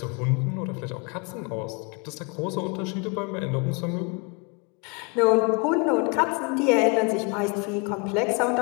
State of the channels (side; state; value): right; quieter; 31.8 dB